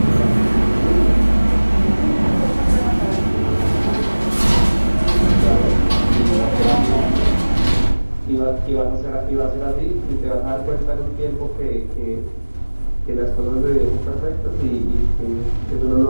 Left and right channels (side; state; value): both; inverted; correlation -1.00